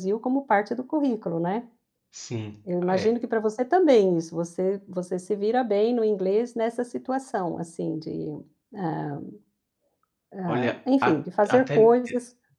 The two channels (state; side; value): identical; both; correlation 1.00